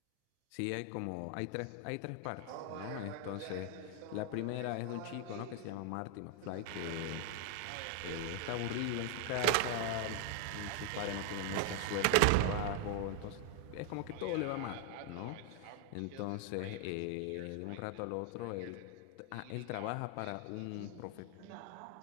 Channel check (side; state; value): both; different; correlation 0.00